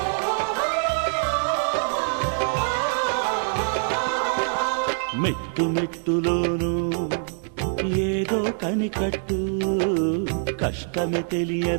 మెట్టు మెట్టులోను ఏదో కనికట్టు కష్టమే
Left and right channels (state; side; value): silent; left; digital silence